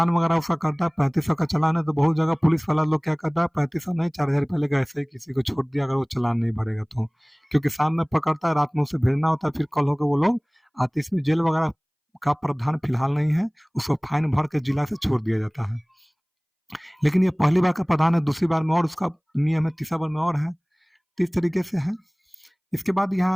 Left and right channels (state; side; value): identical; both; correlation 1.00